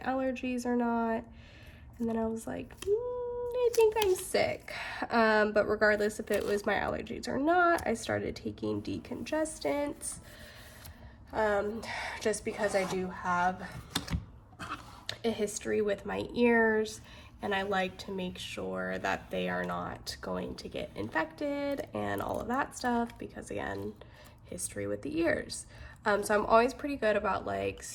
or not. And then I was like, I think I'm sick. But regardless if it was my allergies or not, I started taking decongestants. Just because I do have a history with my ears, and I like to make sure that they are not going to get infected and all of that stuff, because again, history with the ears. So I'm always pretty good about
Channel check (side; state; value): both; identical; correlation 1.00